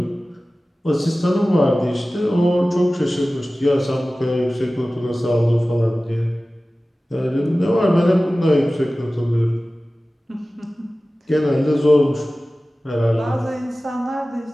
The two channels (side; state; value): both; normal; correlation 0.97